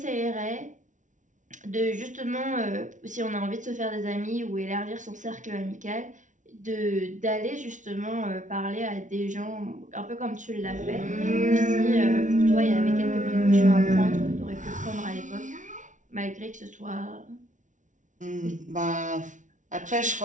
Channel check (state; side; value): late; left; 0.37 ms